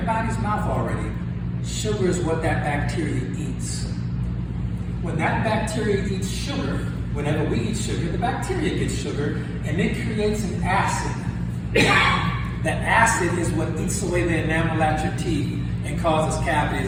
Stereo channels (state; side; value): identical; both; correlation 1.00